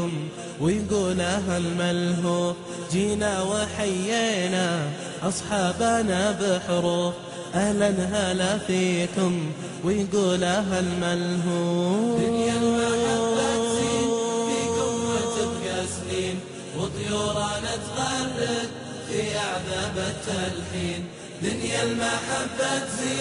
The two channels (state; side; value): identical; both; correlation 1.00